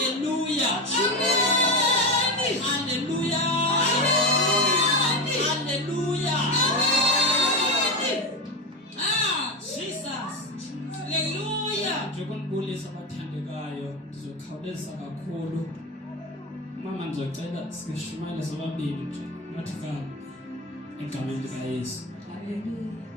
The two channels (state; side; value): normal; both; correlation 0.19